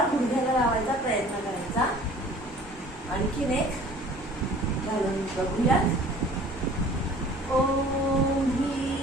गुडघ्याला लावायचा प्रयत्न करायचा. आणखीन एक घालून बघूयात. ओम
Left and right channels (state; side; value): normal; both; correlation 0.49